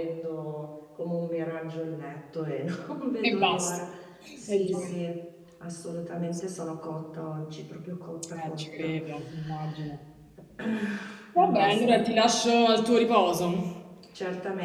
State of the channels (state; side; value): identical; both; correlation 1.00